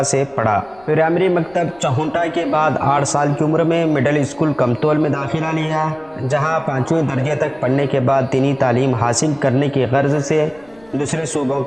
سے پڑھا۔ پرائمری مکتب چہونٹا کے بعد 8 سال کی عمر میں مڈل اسکول کمتول میں داخلہ لیا، جہاں 5ویں درجے تک پڑھنے کے بعد دینی تعلیم حاصل کرنے کی غرض سے دوسرے صوبوں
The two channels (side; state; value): left; noise; rumble, 29 dB below the sound